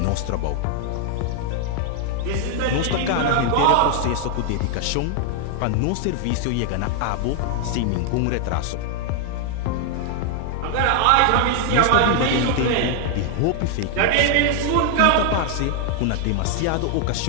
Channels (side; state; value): both; different; correlation 0.00